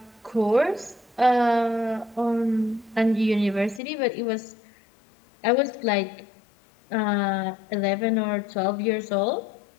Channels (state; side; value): drops out; right; at 3.8 s